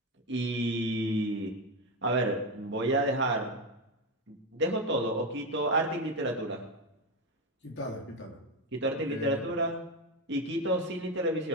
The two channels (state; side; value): normal; both; correlation 0.12